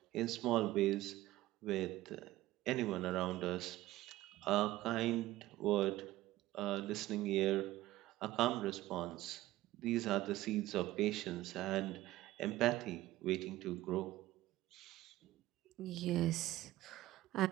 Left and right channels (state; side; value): quieter; left; 16.2 dB